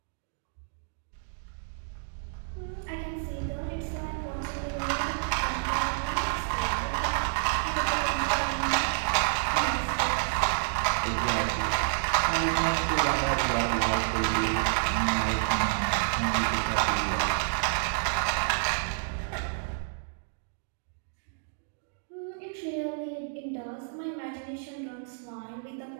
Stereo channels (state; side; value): silent; left; digital silence